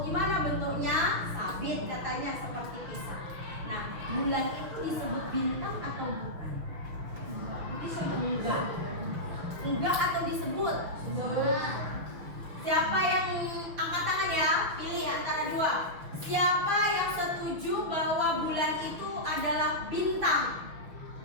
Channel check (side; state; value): left; late; 6.2 ms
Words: gimana bentuknya? Sabit katanya, seperti pisau. Nah, bulan itu disebut bintang atau bukan? Disebut enggak. Enggak atau disebut? Siapa yang angkat tangan ya? Pilih antara dua. Siapa yang setuju bahwa bulan itu adalah bintang?